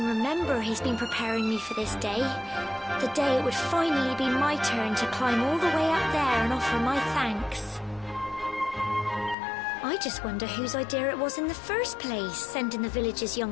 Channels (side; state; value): right; drops out; at 9.3 s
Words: remember, he's been preparing me for this day. The day it would finally be my turn to climb all the way up there and offer my thanks. I just wonder whose idea it was in the first place, sending the village's young